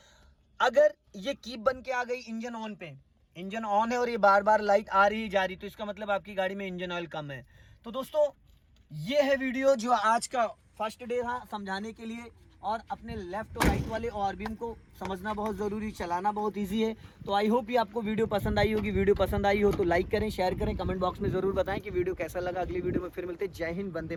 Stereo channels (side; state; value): both; identical; correlation 1.00